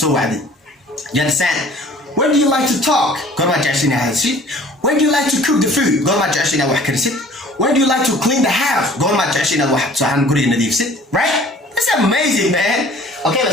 You understand? When do you like to talk? قول ما جاشي نهالشي. When do you like to cook the food? قول ما جاشي نوحكرسي. When do you like to clean the house? Go my trash in a wax, so I'm good in the sit, right? That's amazing, man. Okay,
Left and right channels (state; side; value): normal; both; correlation 0.51